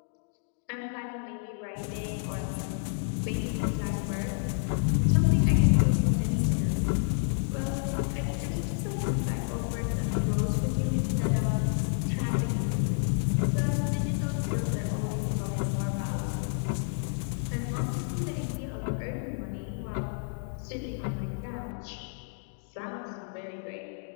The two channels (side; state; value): right; silent; digital silence